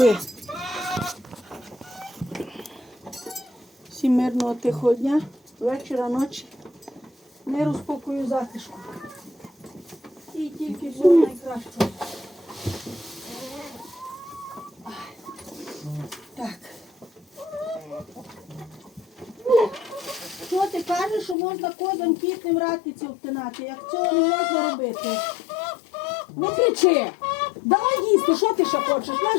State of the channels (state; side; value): drops out; right; at 21.4 s